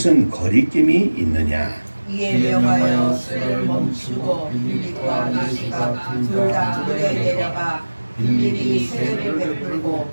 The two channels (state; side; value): inverted; both; correlation -1.00